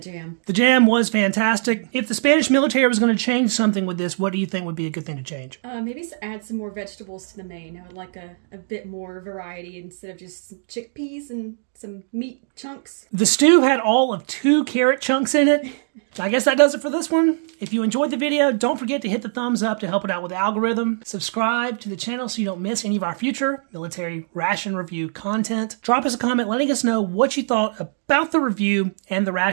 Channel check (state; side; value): silent; left; digital silence